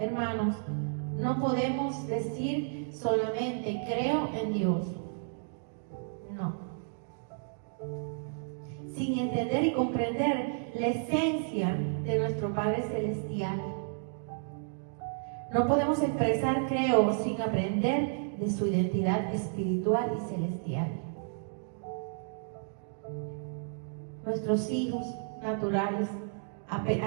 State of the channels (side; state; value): left; silent; digital silence